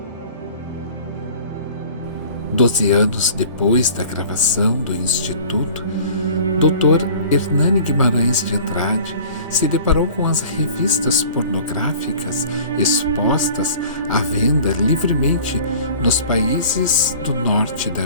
12 anos depois da gravação do Instituto, Dr. Hernani Guimarães de Andrade se deparou com as revistas pornográficas expostas à venda livremente nos países do norte da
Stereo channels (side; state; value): both; inverted; correlation -0.45